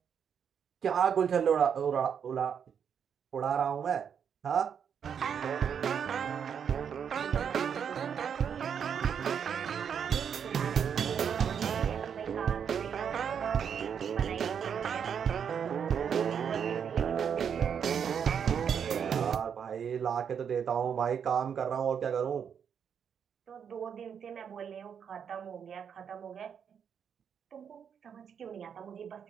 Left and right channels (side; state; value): left; quieter; 7.6 dB